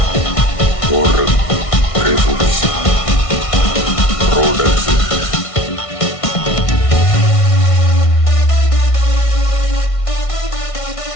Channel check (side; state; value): right; late; 1.6 ms